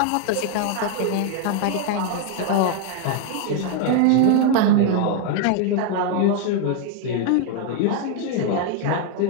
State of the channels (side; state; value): both; different; correlation 0.00